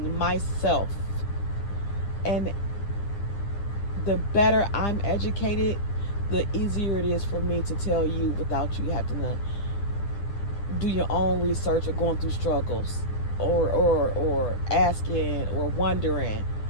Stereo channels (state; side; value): late; right; 9.9 ms